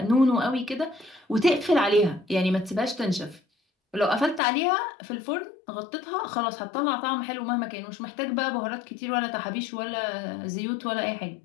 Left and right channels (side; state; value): right; drops out; at 4.4 s